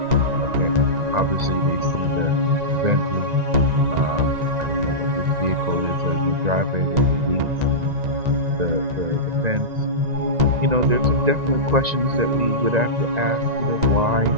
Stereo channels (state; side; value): late; left; 1.9 ms